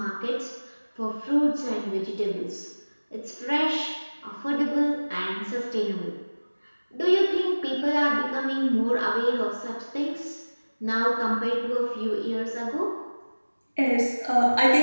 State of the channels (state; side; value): inverted; both; correlation -1.00